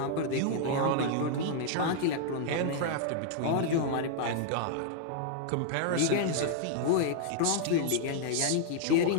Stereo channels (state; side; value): different; both; correlation 0.00